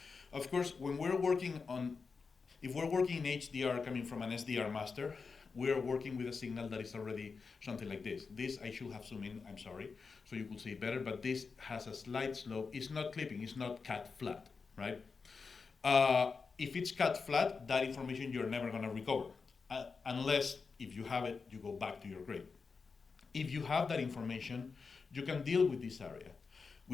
of course, when we're working on, if we're working in HDR coming from an SDR master, we're working with a signal that is already something like this. This I should have zoomed in, I'm sorry, so you could see it better, but this has a slight slope. It's not clipping, it's not cut flat, right? If it's cut flat, that information you're never gonna recover, unless if you have it, you go back to your grade. If you have that information, you can deal with this area.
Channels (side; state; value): right; quieter; 4.9 dB